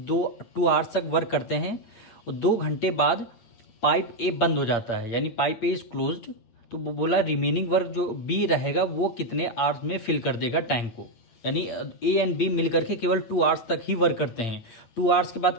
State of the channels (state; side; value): late; right; 8.6 ms